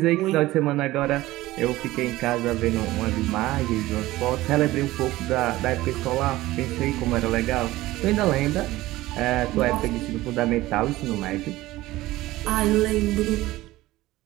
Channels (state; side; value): quieter; left; 17.5 dB